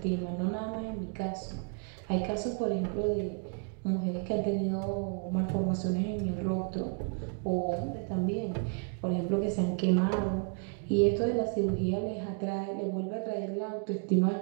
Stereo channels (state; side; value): quieter; left; 35.7 dB